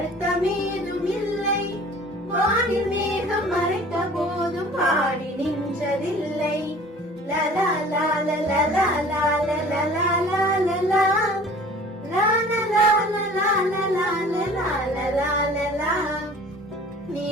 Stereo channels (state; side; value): normal; both; correlation 0.47